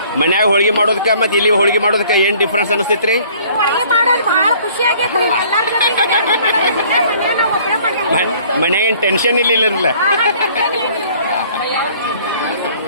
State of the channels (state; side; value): inverted; both; correlation -0.55